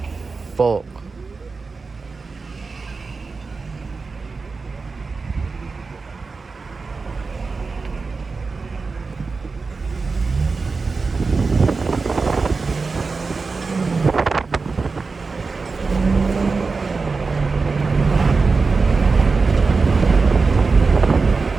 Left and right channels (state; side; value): quieter; left; 4.3 dB